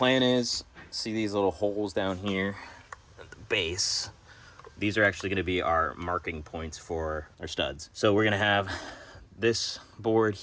is, see these little holes down here at the base? These are actually gonna be our marking points for our studs. So we're gonna have this board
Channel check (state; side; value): identical; both; correlation 1.00